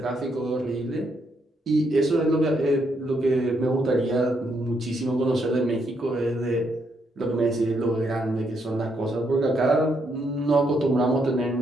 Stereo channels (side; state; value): both; normal; correlation 0.76